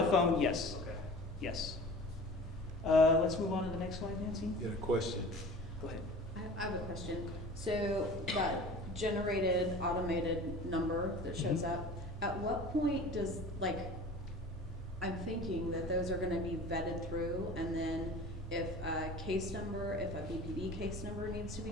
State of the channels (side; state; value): both; normal; correlation 0.40